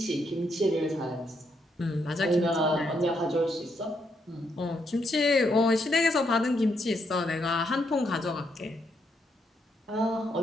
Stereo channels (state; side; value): normal; both; correlation 0.77